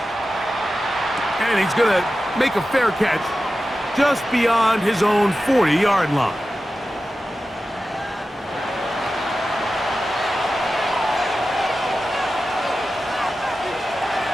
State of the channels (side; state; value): both; normal; correlation 0.93